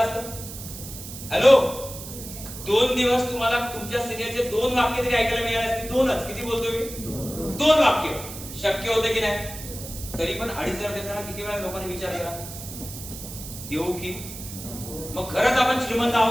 असतं. हॅलो, 2 दिवस तुम्हाला तुमच्या सिनियरचे 2 वाक्य तरी ऐकायला मिळाले असते. 2च, किती बोलतो मी? 2 वाक्य शक्य होते की नाही? तरी पण 2,500 देताना किती वेळा लोकांनी विचार केला, देऊ की? मग खरंच आपण श्रीमंत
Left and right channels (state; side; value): noise; right; hiss, 11 dB below the sound